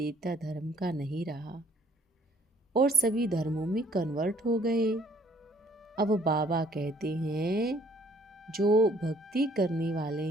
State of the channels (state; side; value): normal; both; correlation 0.60